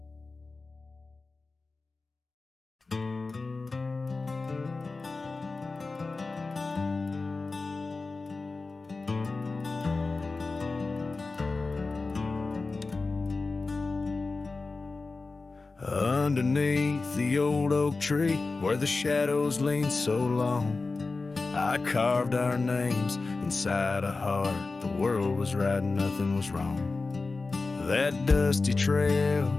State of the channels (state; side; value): quieter; right; 3.8 dB